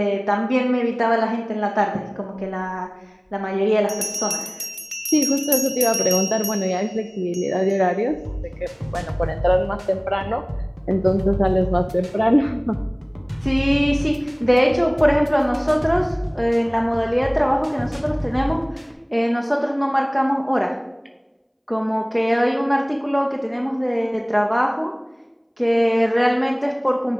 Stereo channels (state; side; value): identical; both; correlation 1.00